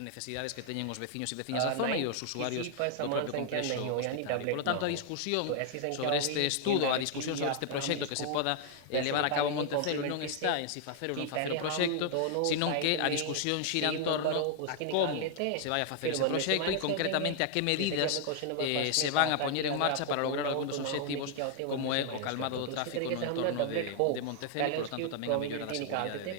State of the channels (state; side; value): different; both; correlation 0.00